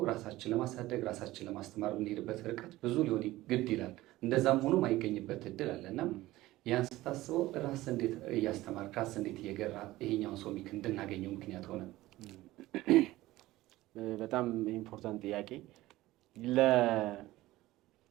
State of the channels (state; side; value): quieter; left; 17.3 dB